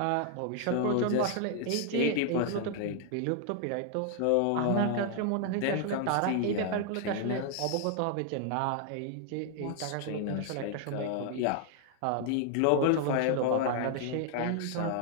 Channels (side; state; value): both; different; correlation 0.00